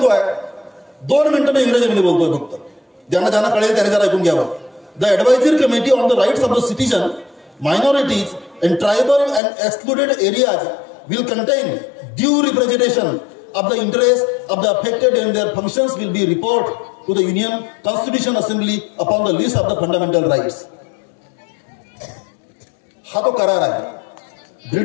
2 मिनिटं मी इंग्रजीमध्ये बोलतोय फक्त, ज्यांना कळेल त्याने जरा ऐकून घ्यावं. The advisory committee on the rights of the citizen, minorities and tribal and excluded areas will contain due representation of the interests of the affected and their functions will be report to the Union Constitution Assembly upon the list of the fundamental rights. हा तो करार आहे.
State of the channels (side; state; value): right; drops out; at 9.4 s